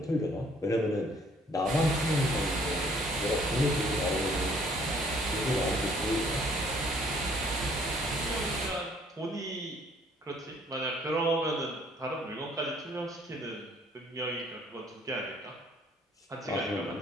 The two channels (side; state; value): both; normal; correlation 0.61